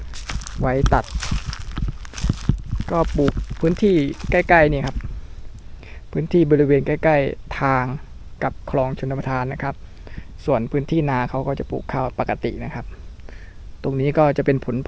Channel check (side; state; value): both; identical; correlation 1.00